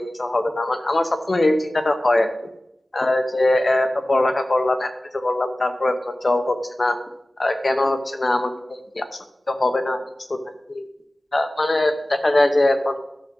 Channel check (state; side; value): normal; both; correlation 0.97